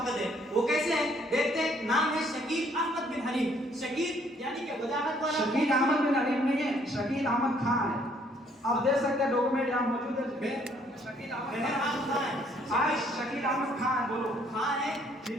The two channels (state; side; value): normal; both; correlation 0.64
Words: ہے. وہ کیسے ہے دیکھتے ہیں. نام ہے شکیل احمد بن حنیف. شکیل یعنی کہ وضاحت والا. شکیل احمد بن حنیف نہیں ہے, شکیل احمد خان ہے. آپ دیکھ سکتے ہیں ڈاکومنٹ یہاں موجود ہے. شکیل احمد خان ہے. شکیل احمد خان ہے. بولو خان ہے.